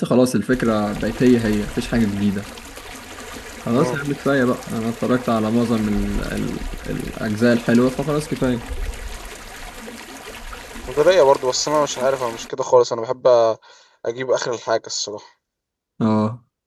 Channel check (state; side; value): identical; both; correlation 1.00